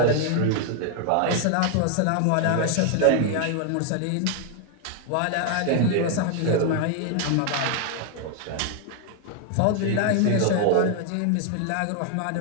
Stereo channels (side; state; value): both; different; correlation 0.00